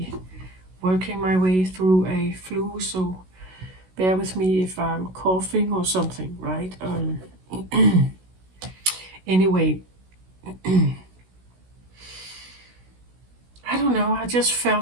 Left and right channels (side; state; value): left; late; 16 ms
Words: working my way through a flu, so bear with me if I'm coughing or something, right? Anyway, I don't know, I just